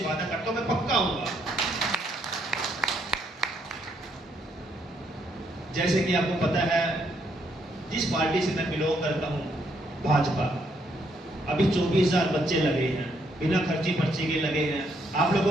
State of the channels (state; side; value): normal; both; correlation 0.73